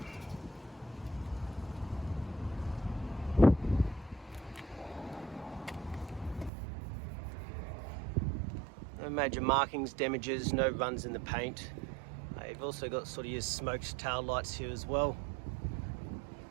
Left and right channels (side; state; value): left; drops out; at 6.5 s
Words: No major markings, damages, no runs in the paint. You've also got sort of your smoked tail lights here as well.